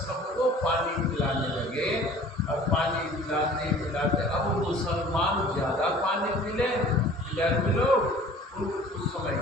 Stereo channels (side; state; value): both; normal; correlation 0.48